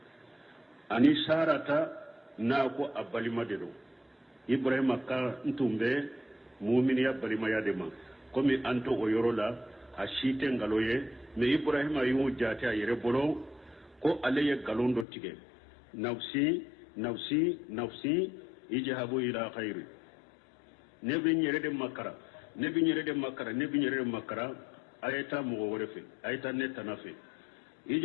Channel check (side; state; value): right; drops out; at 15.1 s